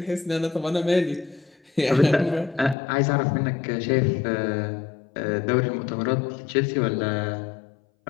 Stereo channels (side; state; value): right; drops out; at 2.8 s